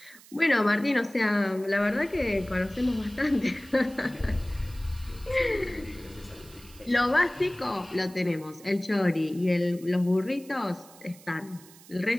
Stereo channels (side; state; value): right; noise; hiss, 22 dB below the sound